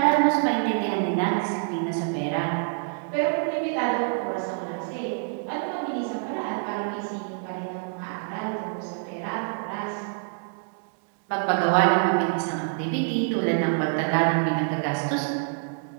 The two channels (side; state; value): left; silent; 61 dB below the other